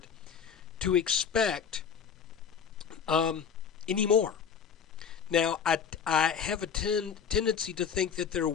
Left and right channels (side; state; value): right; quieter; 7.0 dB